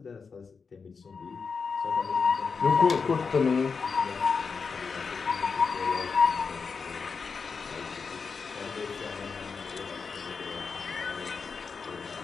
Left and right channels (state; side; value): quieter; right; 5.2 dB